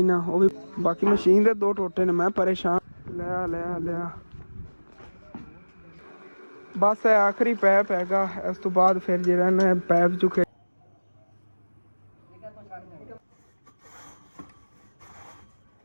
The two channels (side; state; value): both; inverted; correlation -1.00